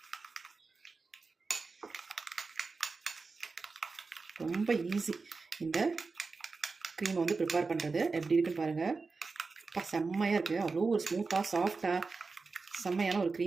ரொம்ப ஈஸி இந்த க்ரீமை வந்து ப்ரிப்பேர் பண்ணுறது. எப்படி இருக்குன்னு பாருங்கள். செம்மையாக இருக்குது. அவ்வளோ ஒரு ஸ்மூத்தாக சாஃப்டாக செம்மையான ஒரு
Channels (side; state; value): left; quieter; 4.2 dB